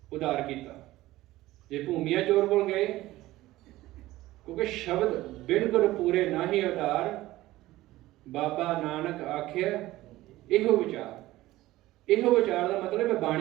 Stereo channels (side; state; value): left; quieter; 16.8 dB